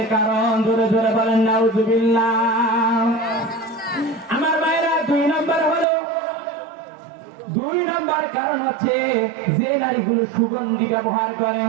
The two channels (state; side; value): drops out; left; at 5.9 s